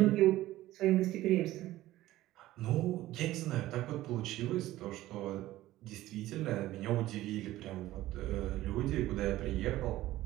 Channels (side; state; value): left; quieter; 15.7 dB